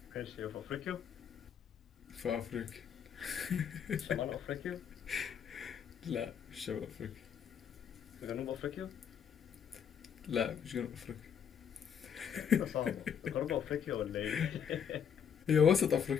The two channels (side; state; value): right; quieter; 7.9 dB